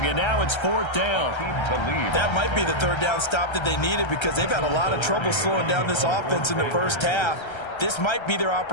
and now it's 4th down. That might be the 3rd down stop that they needed because they've had a lot of trouble slowing down this offense in the first half. This might be their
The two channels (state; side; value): late; right; 1.3 ms